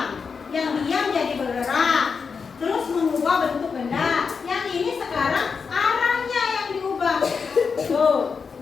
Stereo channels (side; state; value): right; quieter; 5.5 dB